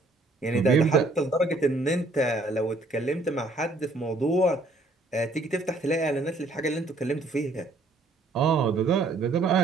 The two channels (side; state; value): left; quieter; 3.1 dB